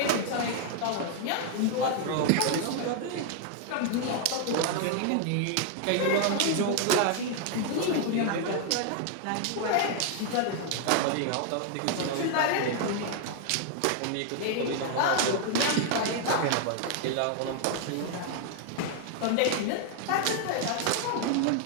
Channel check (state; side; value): different; both; correlation 0.00